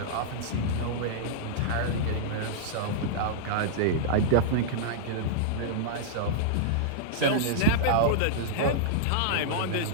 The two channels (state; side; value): different; both; correlation -0.02